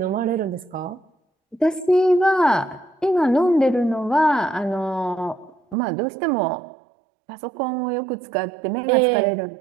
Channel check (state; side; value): drops out; left; at 5.8 s